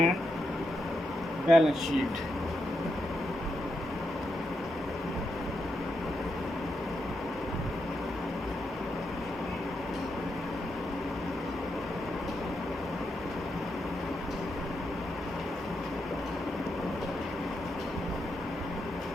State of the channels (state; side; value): normal; both; correlation 0.84